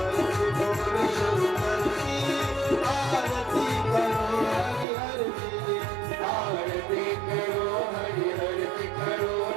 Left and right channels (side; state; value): left; drops out; at 4.9 s